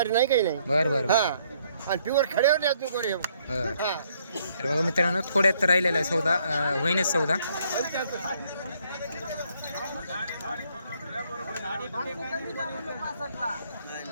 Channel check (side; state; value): both; inverted; correlation -0.68